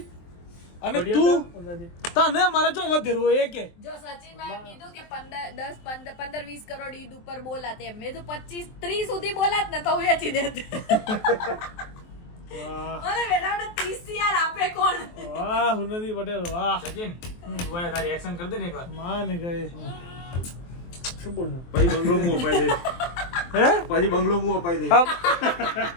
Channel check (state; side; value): late; right; 23 ms